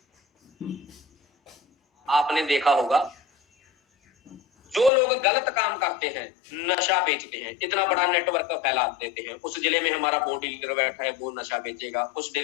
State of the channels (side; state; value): right; drops out; at 4.9 s